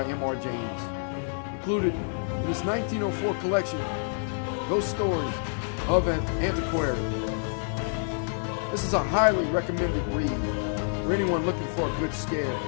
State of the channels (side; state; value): right; silent; digital silence